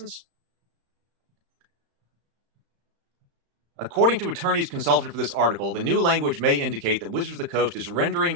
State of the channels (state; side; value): late; left; 35 ms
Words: According to attorneys consulted for this article, the new language may indicate that Wizards of the Coast is rendering